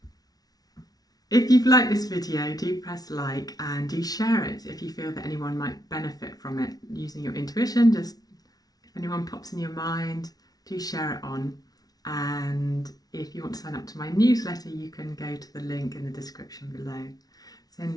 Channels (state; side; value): late; right; 0.19 ms